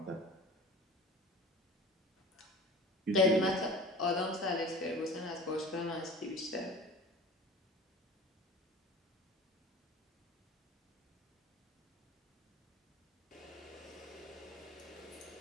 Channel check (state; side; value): normal; both; correlation 0.39